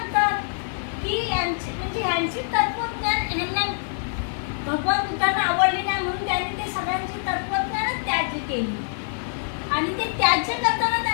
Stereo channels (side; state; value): right; silent; 62 dB below the other